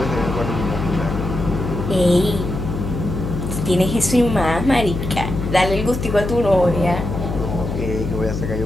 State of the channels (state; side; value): noise; left; hum, 4 dB below the sound